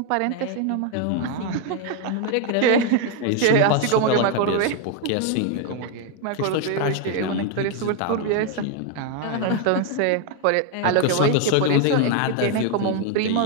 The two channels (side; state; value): both; different; correlation 0.01